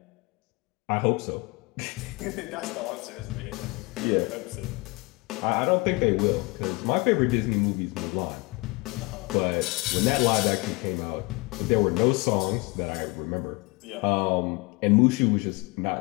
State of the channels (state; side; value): quieter; right; 26.3 dB